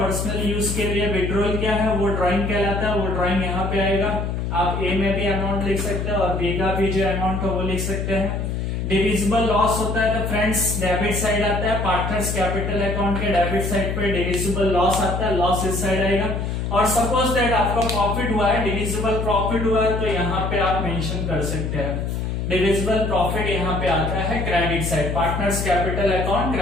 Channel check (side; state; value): left; noise; hum, 2 dB below the sound